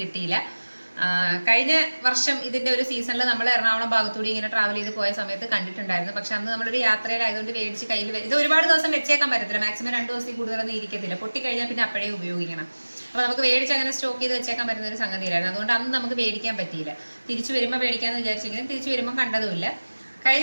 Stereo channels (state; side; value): inverted; both; correlation -1.00